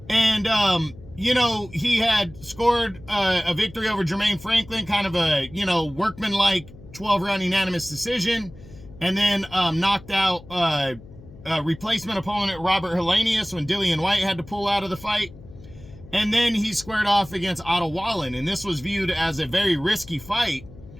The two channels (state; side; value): noise; left; hum, 19 dB below the sound